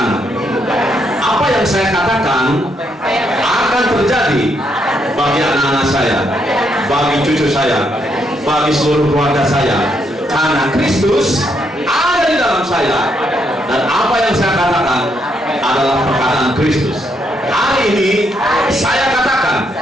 Apa yang saya katakan akan terjadi bagi anak-anak saya, bagi cucu saya, bagi seluruh keluarga saya, karena Kristus ada di dalam saya, dan apa yang saya katakan adalah perkataan Kristus. Hari ini saya katakan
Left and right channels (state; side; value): normal; both; correlation 0.76